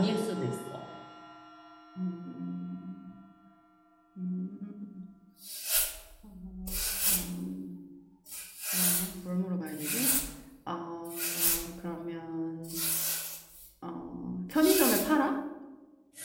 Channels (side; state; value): both; identical; correlation 1.00